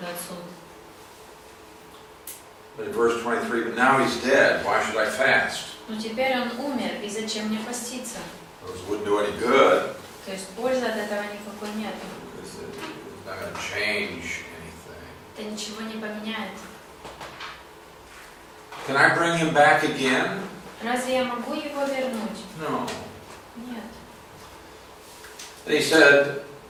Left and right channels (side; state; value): both; identical; correlation 1.00